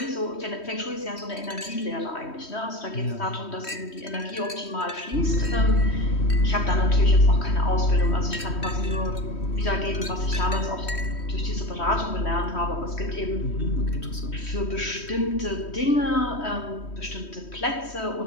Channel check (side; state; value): right; late; 3.1 ms